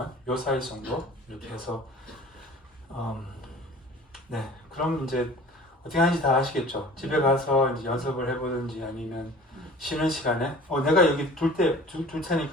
요 사이즈 정도 이렇게 해서 네 그럼 이제 어떻게 하는지 다 아시겠죠? 집에 가서 이제 연습을 해보든지 아니면 쉬는 시간에 내가 여기 둘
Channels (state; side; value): normal; both; correlation 0.44